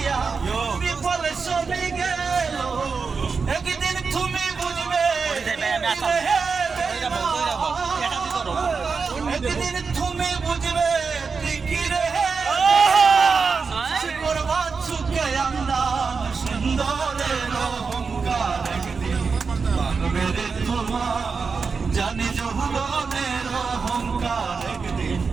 বিফল সবই গেল একদিন তুমি বুঝবে একদিন তুমি বুঝবে ঠিকই রে করবা চুকে আন্দাজ সুন্দরের অহংকার একদিন ভাঙবে রে তোমার জানি যৌবনের অহংকার একদিন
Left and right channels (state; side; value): quieter; left; 5.0 dB